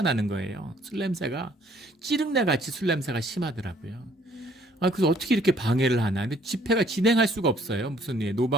나는 거예요. 술 냄새가 찌릉내 같이 술 냄새가 심하더라고요. 그래서 어떻게 이렇게 방해를 하나. 근데 집회가 진행할 수가 없어요. 무슨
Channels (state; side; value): normal; both; correlation 0.62